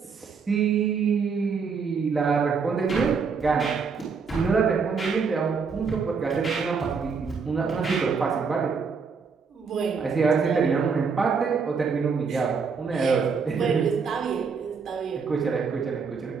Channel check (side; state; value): left; quieter; 5.5 dB